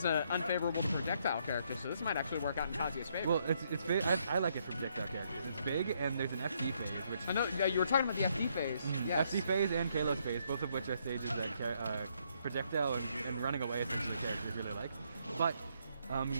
an unfavorable projectile character, so this might actually work out in Kazuya's favor. Well, it's big. I like it for projectile characters. It's big, and there's an FD phase, which I know you were talking about the FD phase. Yes. FD phase and Kalos phase, both of which are stages that projectile and running away essentially characters really like. But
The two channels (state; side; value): inverted; both; correlation -0.72